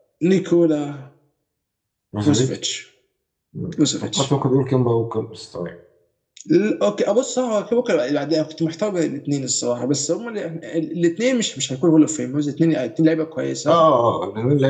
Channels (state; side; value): identical; both; correlation 1.00